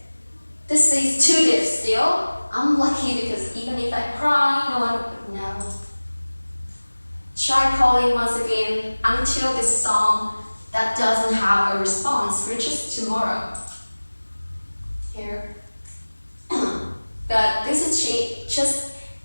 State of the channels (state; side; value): inverted; both; correlation -1.00